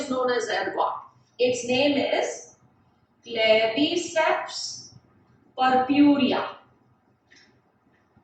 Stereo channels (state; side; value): identical; both; correlation 1.00